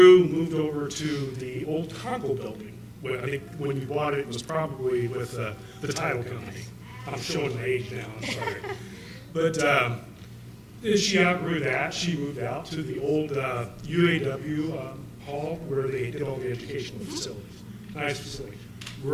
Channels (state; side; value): identical; both; correlation 1.00